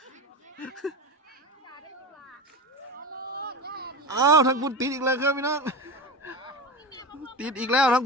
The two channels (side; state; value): both; normal; correlation 0.26